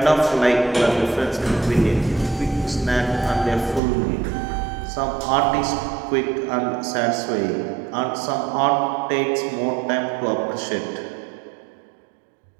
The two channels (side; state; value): left; drops out; at 3.8 s